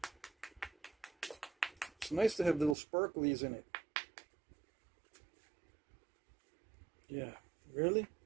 It's nice to have little sparklies in it. Yeah. Really?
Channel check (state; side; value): drops out; left; at 2.8 s